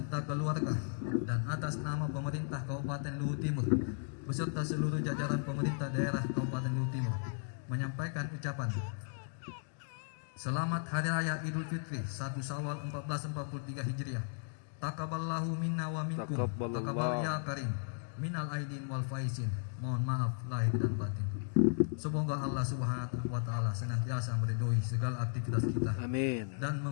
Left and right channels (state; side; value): silent; right; digital silence